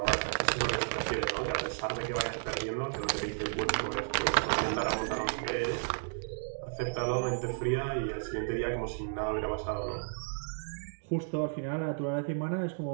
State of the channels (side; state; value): left; silent; digital silence